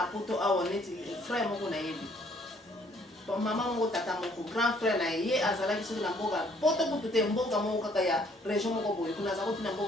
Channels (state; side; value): normal; both; correlation 0.63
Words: poto awoneti frère moko na yebi. Bon maman moko tata moko grand frère na ye azala ki soki na mboka poto kutu te mboka moko kaka ya région moko boye kuna za kotina